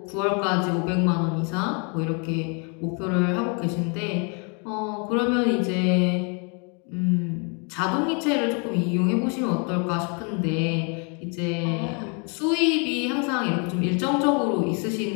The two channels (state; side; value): quieter; right; 35.9 dB